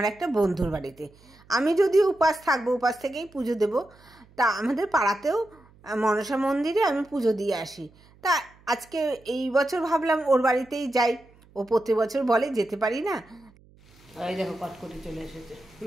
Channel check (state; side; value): noise; right; hum, 28 dB below the sound